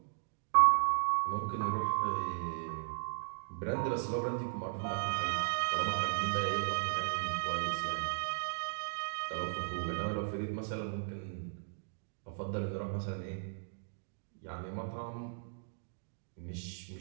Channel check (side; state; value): left; silent; digital silence